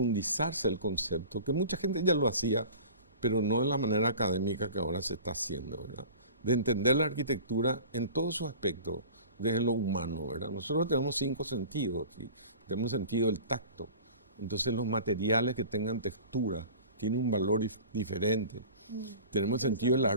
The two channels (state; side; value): inverted; both; correlation -0.41